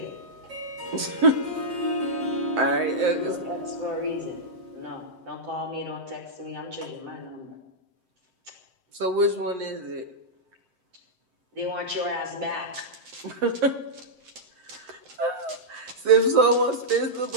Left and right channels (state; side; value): late; left; 7.8 ms